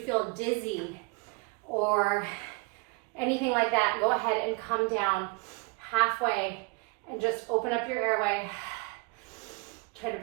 dizzy or anything like that, go ahead and come down halfway and just open up your airway. Try to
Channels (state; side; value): quieter; left; 28.6 dB